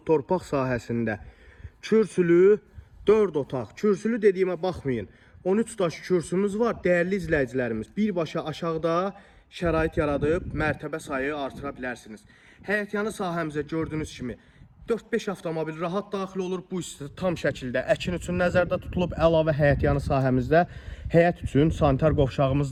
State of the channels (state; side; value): identical; both; correlation 1.00